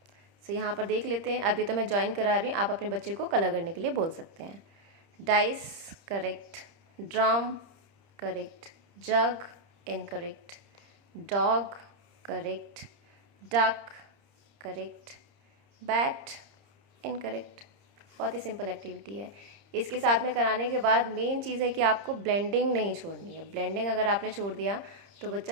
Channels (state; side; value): late; left; 30 ms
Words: सो यहाँ पर देख लेते हैं। अभी तो मैं ज्वाइन करा रही हूँ, आप अपने बच्चे को कलर करने के लिए बोल सकते हैं। Dice correct, drum correct, jug incorrect, dog correct, duck correct, bat incorrect. बहुत ही सिंपल एक्टिविटी है। इसके साथ में कराने के बाद मेन चीज़ है कि आपको ब्लेंडिंग नहीं छोड़नी है। ब्लेंडिंग अगर आपने छोड़ दिया तो